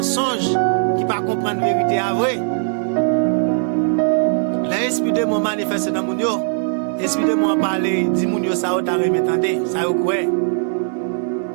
qui pas comprendre la vérité à vrai. L'esprit de mon manifeste dans mon yo. L'esprit de mon parler, dit mon yo ça ou ta remetande, ça ou quoi.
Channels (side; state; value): left; silent; digital silence